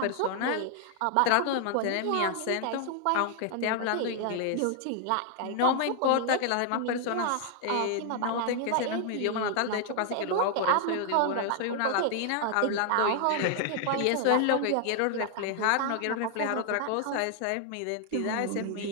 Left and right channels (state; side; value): different; both; correlation 0.00